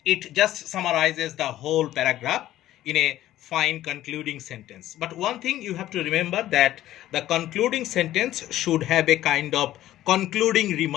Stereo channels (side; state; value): right; quieter; 13.9 dB